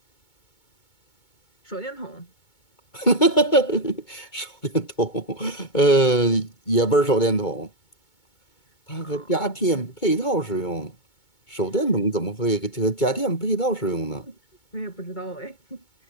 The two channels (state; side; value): late; right; 2.2 ms